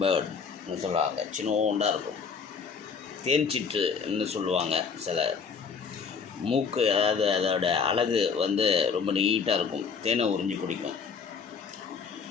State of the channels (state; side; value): quieter; right; 5.7 dB